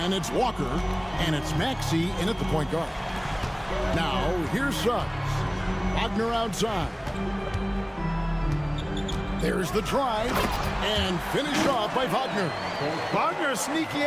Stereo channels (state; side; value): identical; both; correlation 1.00